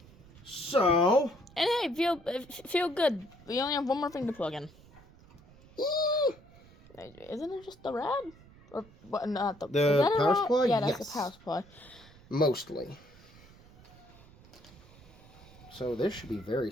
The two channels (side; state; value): right; noise; rumble, 23 dB below the sound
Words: So... And hey, feel good. We only have one more thing to plug in. Isn't it just the rad? Or what? Not the. The power supply? Yeah, that's yes. the power supply. Mostly. So this should be very